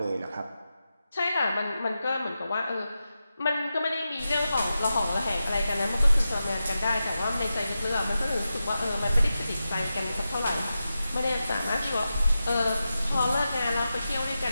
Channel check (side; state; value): both; inverted; correlation -0.91